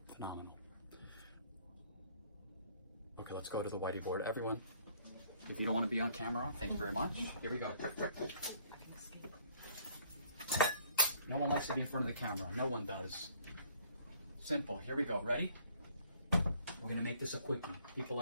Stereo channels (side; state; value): both; inverted; correlation -0.59